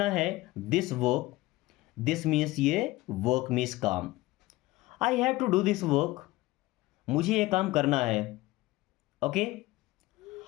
है, दिस वर्क, दिस मीन्स ये, वर्क मीन्स काम, I have to do this work मुझे ये काम करना है, okay.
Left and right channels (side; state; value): right; quieter; 19.1 dB